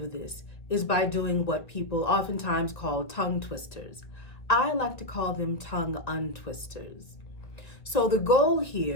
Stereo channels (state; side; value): late; right; 1.7 ms